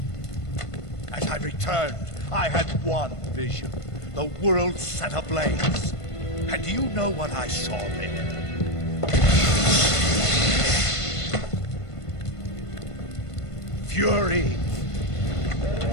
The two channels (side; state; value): right; late; 1.5 ms